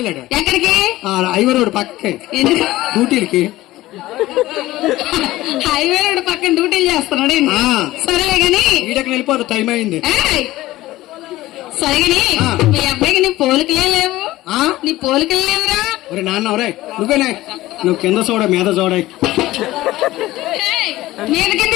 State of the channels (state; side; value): quieter; right; 17.0 dB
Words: ఎక్కడికి? హైవే రోడ్ పక్కకి డ్యూటీలకి. హైవే రోడ్ పక్కన డ్యూటీలు చేస్తున్నాడు. సరేలే గాని ఈడకి వెళ్ళిపోదు, టైం అయింది. సరే గాని మీ అబ్బాయికి నీ పోలికలే లేవు. నీ పోలికలు లేవురా. ఒరే నాన్న, ఒరే నువ్వేనే, నువ్వు కింద చూడ మీద చూడ. మీద కింద